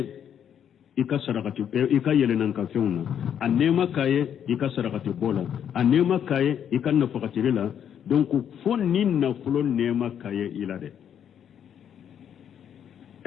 ikasarakati ikayele nan kafeuna anema kaye ikasarakati bola anema kaye ikanna fakatirila donc fon ninna fulo nema kaye ilade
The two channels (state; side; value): quieter; right; 9.0 dB